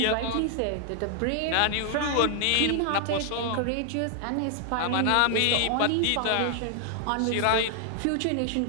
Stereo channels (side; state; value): both; different; correlation 0.00